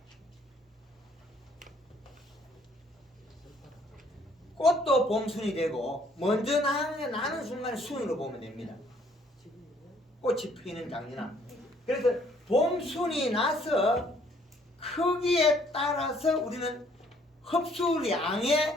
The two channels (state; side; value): normal; both; correlation 0.63